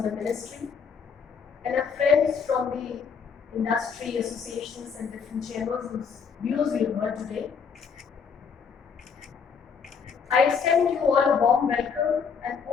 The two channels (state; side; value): quieter; right; 6.2 dB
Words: the ministry, and our friends from the industry associations and different chambers whose views we have heard today. I extend you all a warm welcome and